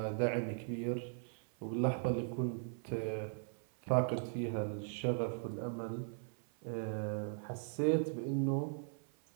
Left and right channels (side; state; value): left; silent; 52 dB below the other